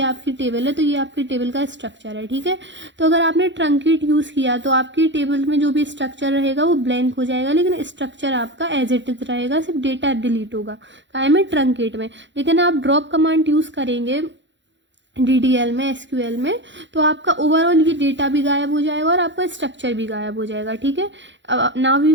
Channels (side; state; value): left; late; 0.53 ms